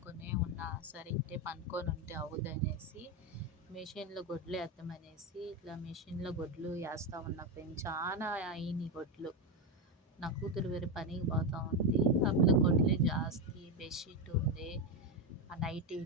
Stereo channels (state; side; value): normal; both; correlation 0.10